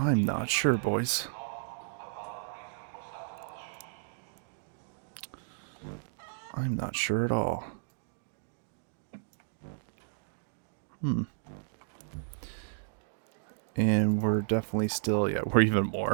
not sure, boys. I'm not sure at all. And we're definitely still, yeah, we're even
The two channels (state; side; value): silent; left; digital silence